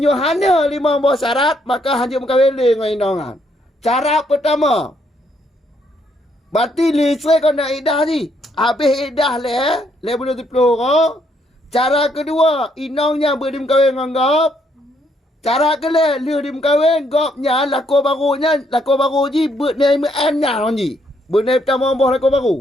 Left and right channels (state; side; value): normal; both; correlation 0.72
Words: 5 syarat maka hanya mengkawin le dengan inongan. Cara pertama. Berarti lisai kau nak iddah ni. Habis iddah le bulan 10 orang. Cara kedua, inongnya berdimkawin dengan gop. Cara kele liu dim kawin gopnya lako baru ji bernai nya ji. Bernai pertama boh lako